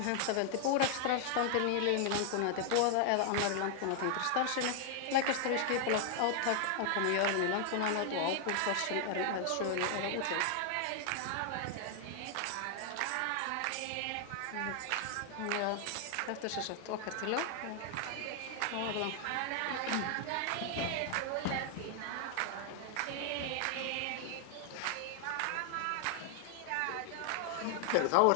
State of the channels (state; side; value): different; both; correlation 0.00